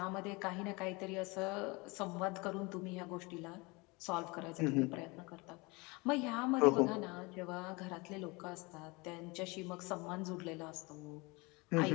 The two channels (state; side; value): quieter; right; 26.0 dB